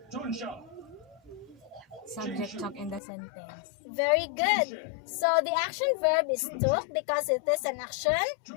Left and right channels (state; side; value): drops out; right; at 3.0 s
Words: Subject took in the sentence. Very good. So, the action verb is took because it is an action